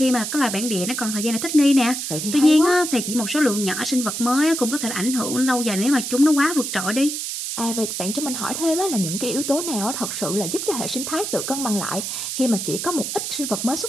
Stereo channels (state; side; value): noise; right; hiss, 4 dB below the sound